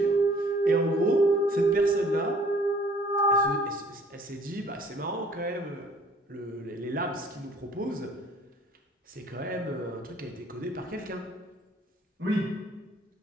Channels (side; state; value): both; normal; correlation 0.56